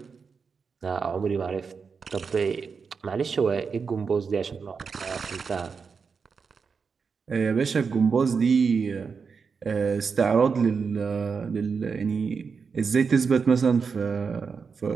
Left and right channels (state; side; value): quieter; left; 5.5 dB